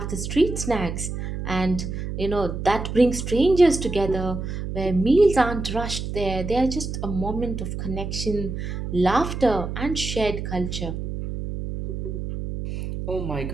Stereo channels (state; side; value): noise; right; hum, 5 dB below the sound